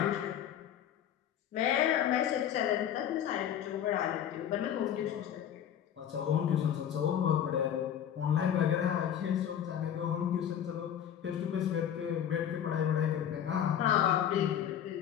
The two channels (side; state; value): right; quieter; 9.7 dB